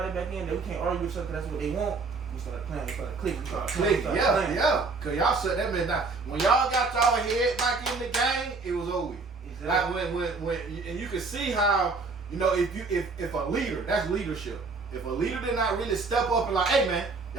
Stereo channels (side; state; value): left; quieter; 4.1 dB